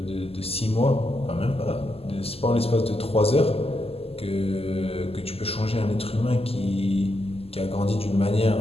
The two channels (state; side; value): late; right; 0.29 ms